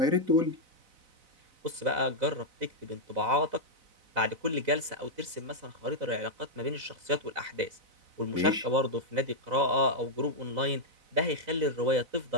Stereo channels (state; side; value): late; left; 4.0 ms